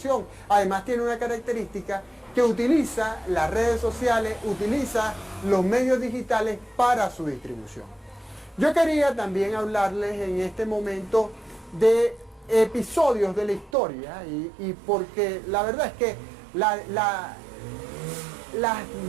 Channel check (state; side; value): drops out; left; at 13.7 s